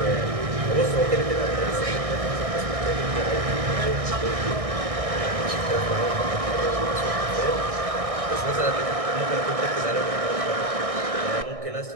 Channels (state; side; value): late; left; 1.6 ms